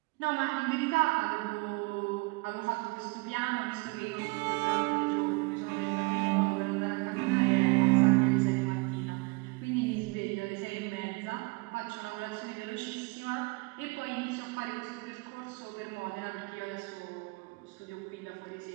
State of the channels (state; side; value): quieter; left; 27.2 dB